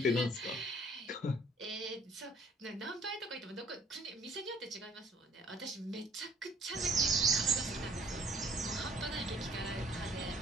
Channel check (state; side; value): normal; both; correlation 0.56